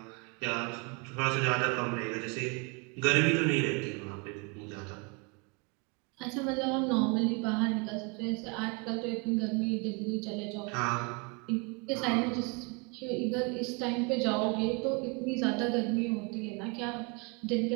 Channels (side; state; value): left; quieter; 30.9 dB